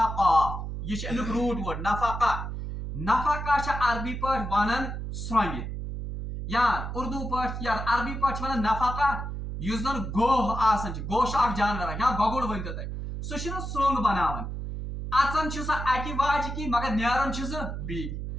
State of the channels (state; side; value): noise; right; hum, 5 dB below the sound